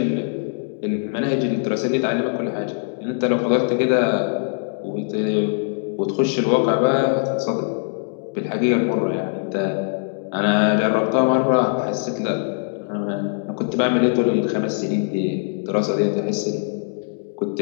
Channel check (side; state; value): right; silent; digital silence